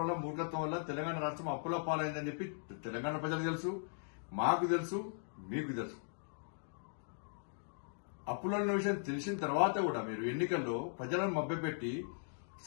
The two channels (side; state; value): right; silent; digital silence